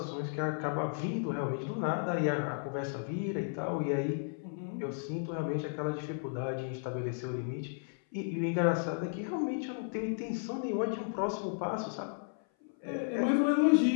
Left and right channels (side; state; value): right; silent; 55 dB below the other